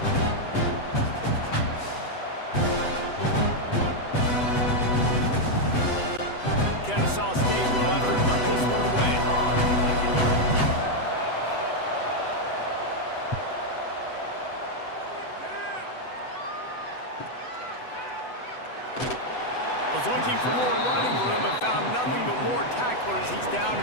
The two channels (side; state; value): right; late; 8.0 ms